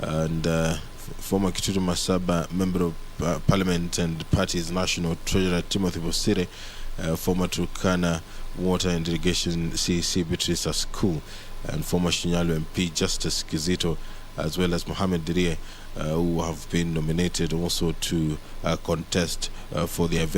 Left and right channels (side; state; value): both; identical; correlation 1.00